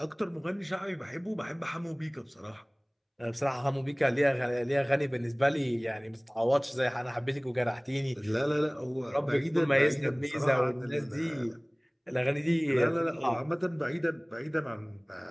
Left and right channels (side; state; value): both; identical; correlation 1.00